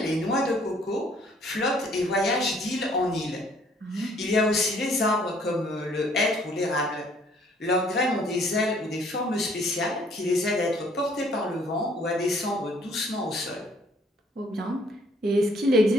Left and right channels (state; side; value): normal; both; correlation 0.61